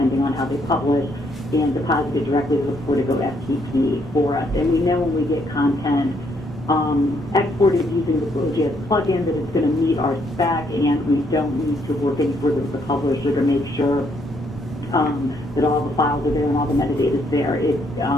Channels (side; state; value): both; normal; correlation 0.71